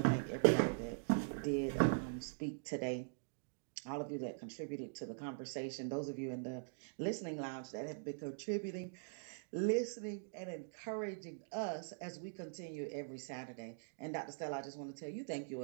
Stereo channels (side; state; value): left; silent; digital silence